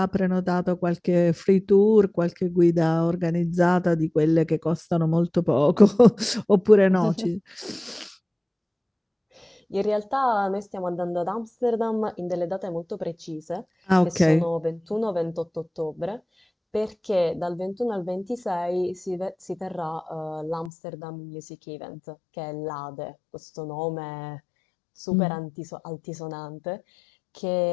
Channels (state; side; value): drops out; right; at 20.7 s